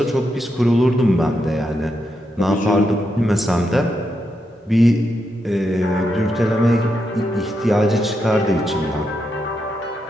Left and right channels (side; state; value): both; normal; correlation 0.83